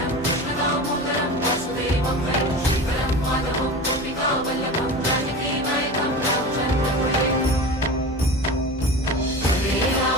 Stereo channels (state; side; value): noise; right; hum, 21 dB below the sound